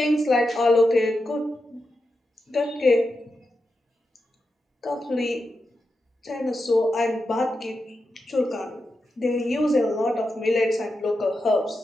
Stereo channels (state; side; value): normal; both; correlation 0.88